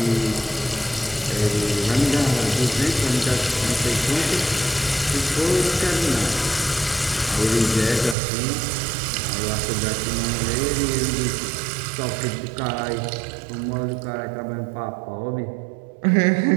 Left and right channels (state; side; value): drops out; left; at 8.2 s